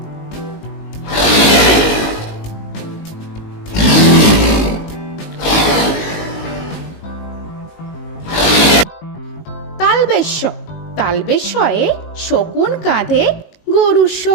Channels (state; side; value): late; right; 19 ms